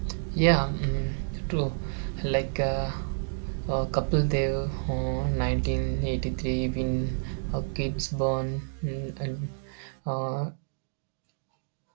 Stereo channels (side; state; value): left; silent; digital silence